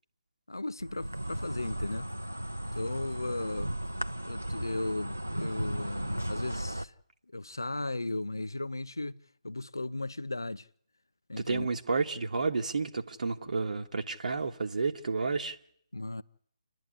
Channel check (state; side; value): inverted; both; correlation -0.90